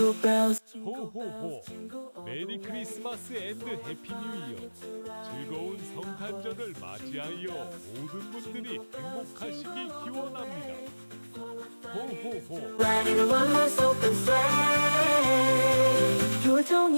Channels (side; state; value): both; inverted; correlation -1.00